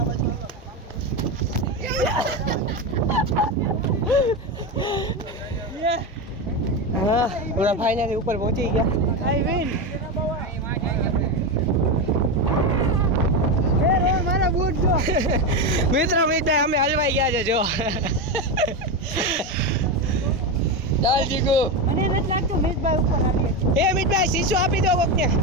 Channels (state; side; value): normal; both; correlation 0.14